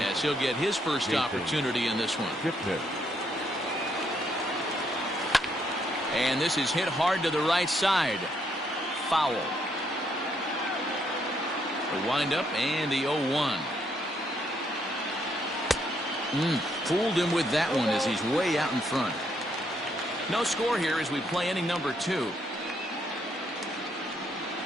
as he'll get his first opportunity in this one. And this is hit hard to the right side. Foul. The windup and the 0-1. Fooled him with that one as he's way out in front. No score here as we play inning number 2.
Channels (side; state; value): both; normal; correlation 0.73